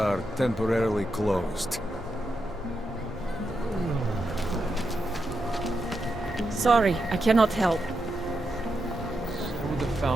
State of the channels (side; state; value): both; normal; correlation 0.85